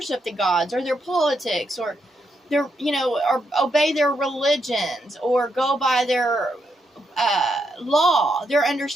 the gods or their politics or their, or obey their religions or go by their law, their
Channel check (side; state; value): both; normal; correlation 0.80